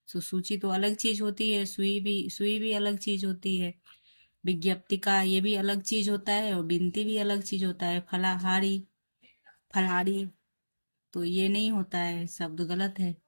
तो सूची तो अलग चीज होती है, सुई भी अलग चीज होती है। विज्ञप्तिका ये भी अलग चीज होता है, और बिनती भी अलग चीज होता है। फलाहारी, फलहारी, तो ये नहीं होता है, शब्द गलत है।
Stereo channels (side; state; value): both; inverted; correlation -1.00